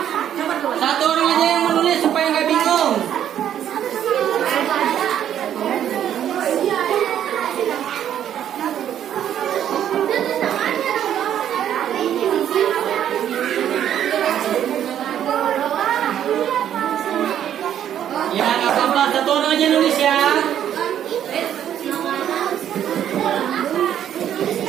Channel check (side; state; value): left; quieter; 10.2 dB